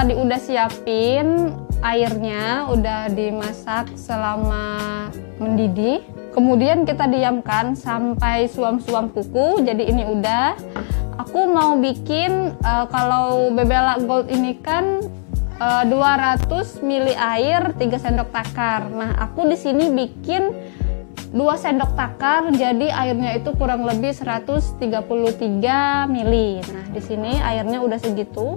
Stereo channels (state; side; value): silent; right; 63 dB below the other